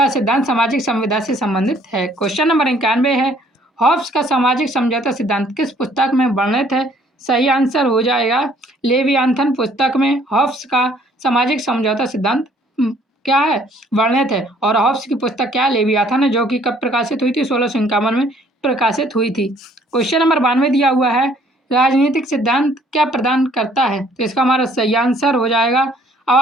सिद्धांत सामाजिक संविदा से संबंधित है। क्वेश्चन नंबर 91 है हॉब्स का सामाजिक समझौता सिद्धांत किस पुस्तक में वर्णित है? सही आंसर हो जाएगा लेवियाथन पुस्तक में हॉब्स का सामाजिक समझौता सिद्धांत क्या है वर्णित है, और हॉब्स की पुस्तक क्या है लेवियाथन है, जो कि कब प्रकाशित हुई थी 1651 में प्रकाशित हुई थी। क्वेश्चन नंबर 92 दिया हुआ है राजनीतिक सिद्धांत क्या प्रदान करता है? तो इसका हमारा सही आंसर हो जाएगा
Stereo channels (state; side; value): normal; both; correlation 0.61